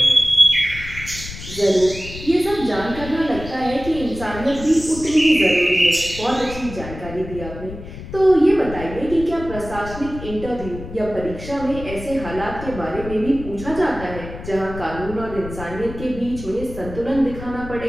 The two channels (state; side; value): noise; left; rumble, 12 dB below the sound